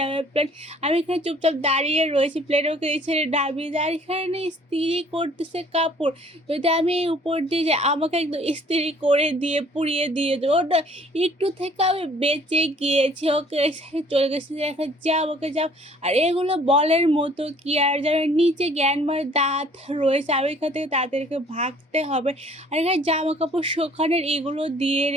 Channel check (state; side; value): normal; both; correlation 0.56